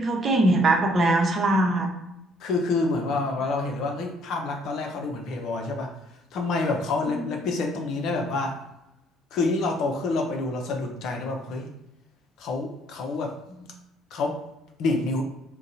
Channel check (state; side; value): normal; both; correlation 0.64